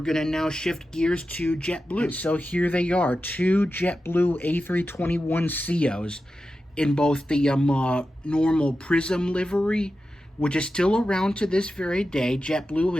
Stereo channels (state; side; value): normal; both; correlation 0.92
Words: going to now shift gears to JetBlue. And so here they are, two JetBlue A321ceos in both the normal Prism livery, which is still around to this very day. JetBlue